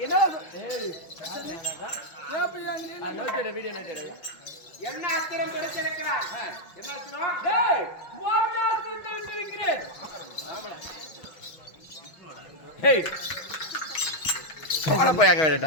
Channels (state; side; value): late; right; 6.0 ms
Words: என்ன என்ன அஸ்திரம் கிடைச்சிருக்கிறார்? என்ன அஸ்திரம்? டேய் மோகனாஸ்திரத்தை விட்டிருக்கிறேன். ஹேய் போய் அங்க